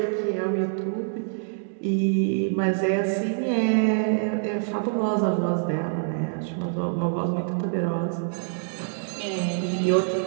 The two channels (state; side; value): silent; left; digital silence